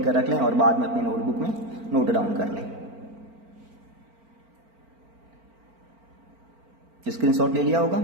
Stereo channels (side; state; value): left; late; 4.4 ms